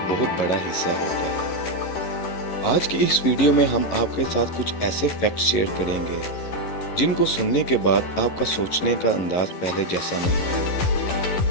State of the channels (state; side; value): late; right; 11 ms